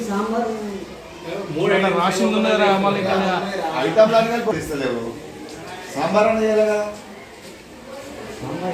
ఐటమ్ లాగా ఇస్తలేవు. సాంబార్ అని చేయాలి కదా?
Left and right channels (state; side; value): identical; both; correlation 1.00